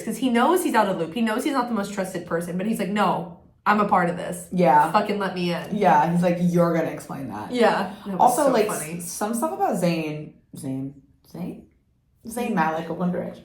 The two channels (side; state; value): both; identical; correlation 1.00